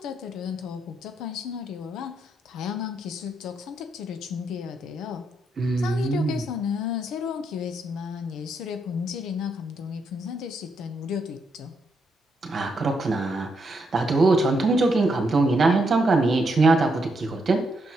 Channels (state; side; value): normal; both; correlation 0.79